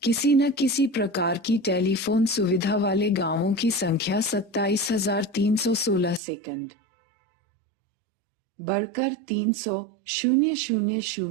किसी न किसी प्रकार की टेलीफोन सुविधा वाले गांवों की संख्या 27,316 सेकंड बढ़कर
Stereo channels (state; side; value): drops out; left; at 6.2 s